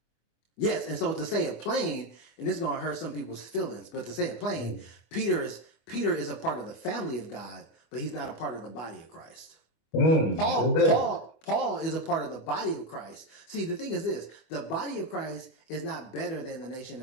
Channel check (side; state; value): right; late; 25 ms